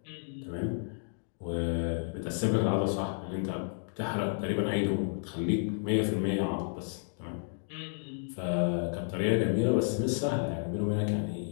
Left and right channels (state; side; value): silent; right; digital silence